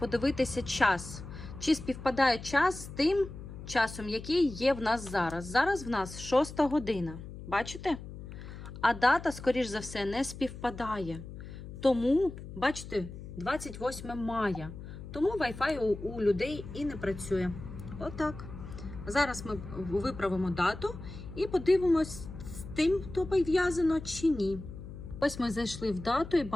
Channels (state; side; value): noise; left; hum, 12 dB below the sound